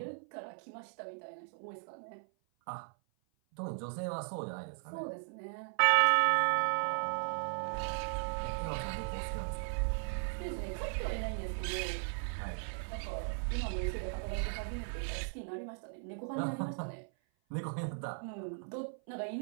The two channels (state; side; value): silent; left; 53 dB below the other